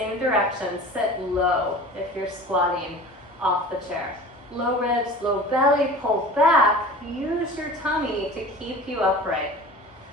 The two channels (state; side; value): normal; both; correlation 0.39